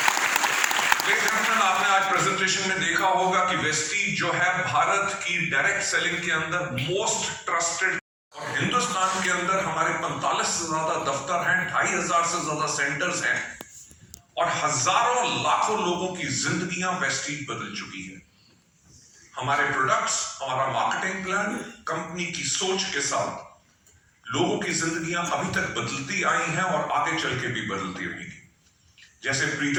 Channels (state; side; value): identical; both; correlation 1.00